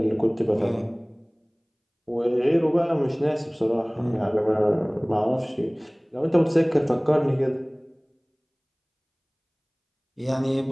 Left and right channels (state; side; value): identical; both; correlation 1.00